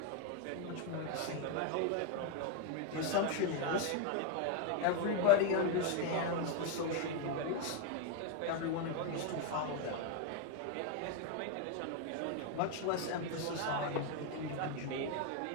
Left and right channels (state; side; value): different; both; correlation 0.01